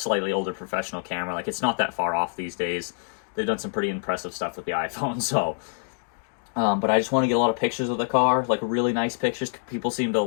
older professional camera. It's not that far off these days. They've done some pretty impressive stuff with the iPhone, so. But I just want to get a lot of pictures of the car, really nice pictures. People seem to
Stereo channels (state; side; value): silent; right; 61 dB below the other